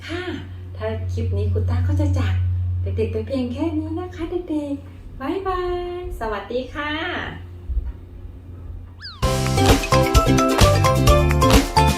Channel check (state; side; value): identical; both; correlation 1.00